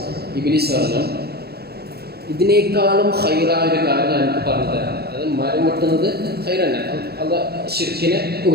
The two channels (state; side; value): late; left; 0.46 ms